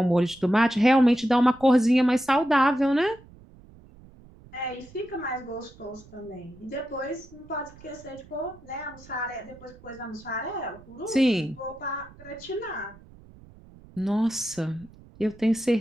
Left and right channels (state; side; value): noise; right; rumble, 23 dB below the sound